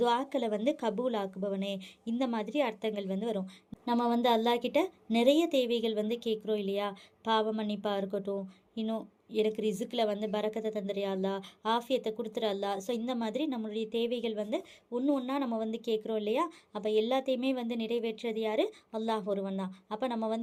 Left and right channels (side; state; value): both; identical; correlation 1.00